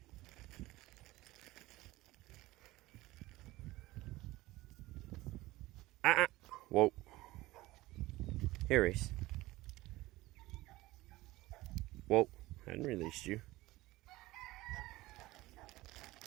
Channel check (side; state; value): left; quieter; 18.6 dB